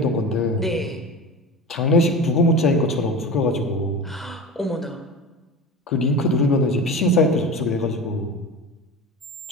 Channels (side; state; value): both; normal; correlation 0.30